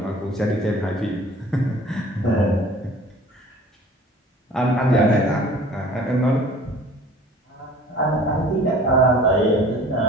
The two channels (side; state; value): both; normal; correlation 0.47